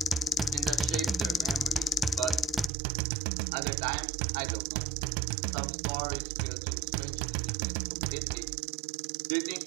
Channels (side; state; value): left; drops out; at 2.7 s